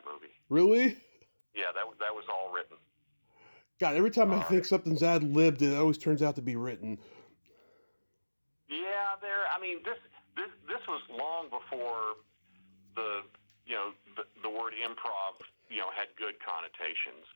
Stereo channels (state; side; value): inverted; both; correlation -1.00